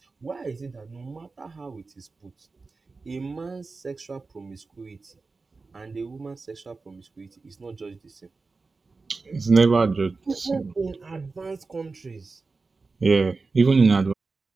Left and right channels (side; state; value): left; quieter; 4.0 dB